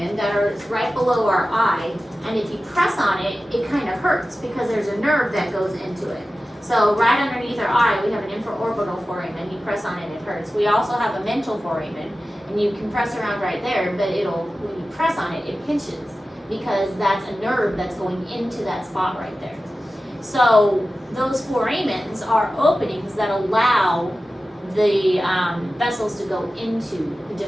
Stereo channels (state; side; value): normal; both; correlation 0.95